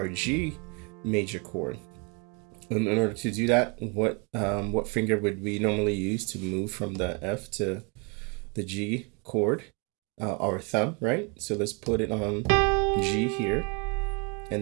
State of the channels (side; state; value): left; quieter; 32.7 dB